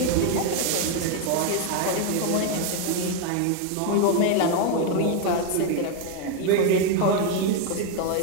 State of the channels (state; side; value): different; both; correlation 0.01